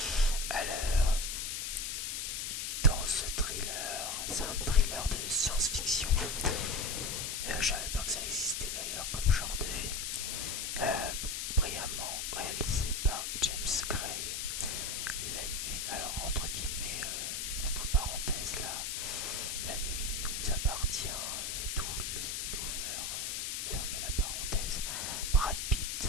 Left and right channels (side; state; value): left; noise; hiss, 2 dB below the sound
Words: Alors, dans ce thriller, c'est un thriller de science-fiction. Je savais pas que ça existait d'ailleurs comme genre de film. Brillamment réalisé par James Gray. La nuit, alors entre guillemets, entre parenthèses là, la nuit nous appartient, tout l'over, fermez la parenthèse. Brad Pitt